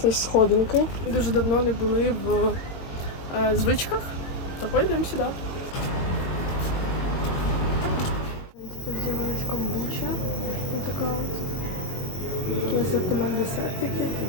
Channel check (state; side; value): late; right; 22 ms